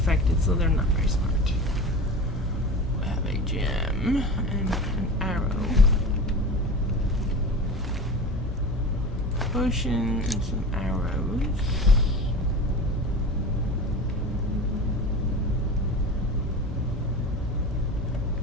so they're not very smart. We have a gem and an arrow. Potion and some arrows.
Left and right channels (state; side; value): normal; both; correlation 0.32